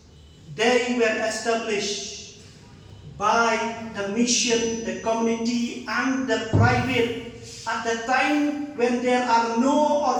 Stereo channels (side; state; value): both; identical; correlation 1.00